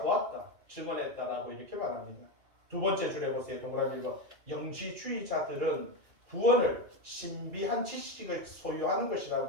보았다, 증언했다라고 이렇게 말합니다. 두 번째 줄에 보세요. 동그라미 1번. 영지주의자들은 구원을 신비한 지식을 소유하는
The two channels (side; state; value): left; late; 2.8 ms